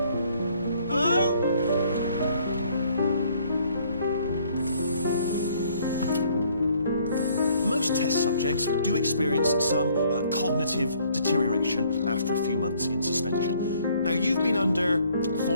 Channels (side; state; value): both; inverted; correlation -0.63